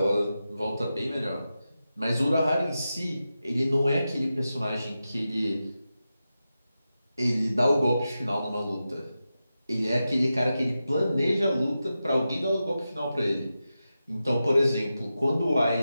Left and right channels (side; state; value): both; inverted; correlation -0.91